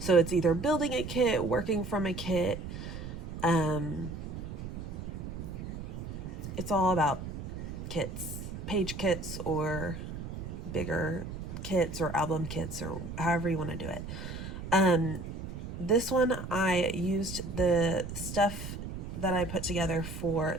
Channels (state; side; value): noise; right; rumble, 8 dB below the sound